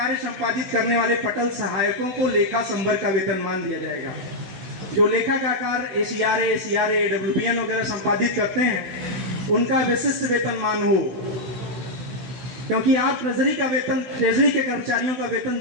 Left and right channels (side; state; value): left; late; 16 ms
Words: संपादित करने वाले पटल सहायकों को लेखा संवर्ग का वेतनमान दिया जाएगा। जो लेखा का कार्य ACRA, AWBN वगैरह संपादित करते हैं उनका विशिष्ट वेतनमान हो, क्योंकि आप ट्रेजरी के कर्मचारियों का वेतन